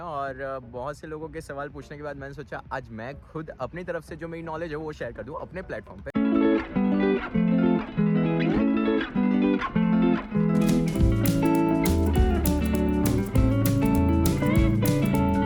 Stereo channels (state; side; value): identical; both; correlation 1.00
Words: और बहुत से लोगों के सवाल पूछने के बाद मैंने सोचा आज मैं खुद अपनी तरफ से जो मेरी नॉलेज है वो शेयर कर दूं अपने प्लेटफॉर्म पे।